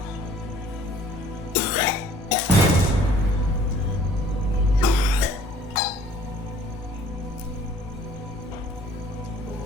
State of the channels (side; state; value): both; normal; correlation 0.55